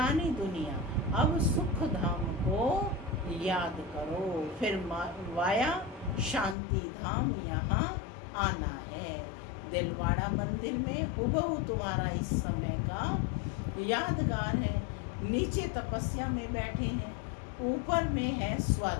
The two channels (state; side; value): drops out; right; at 6.6 s